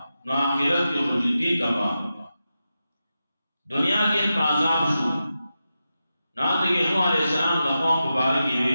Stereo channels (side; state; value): both; inverted; correlation -0.90